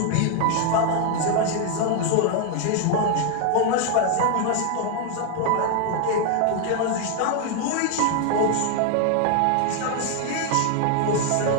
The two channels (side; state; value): both; different; correlation 0.00